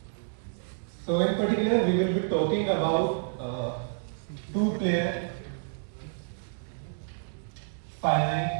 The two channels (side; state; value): left; silent; digital silence